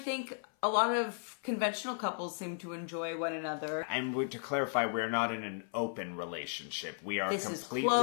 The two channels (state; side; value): silent; right; 54 dB below the other